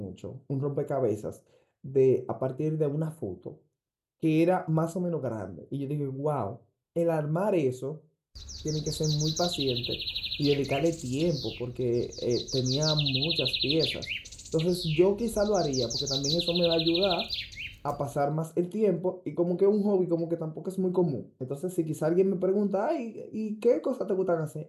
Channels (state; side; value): identical; both; correlation 1.00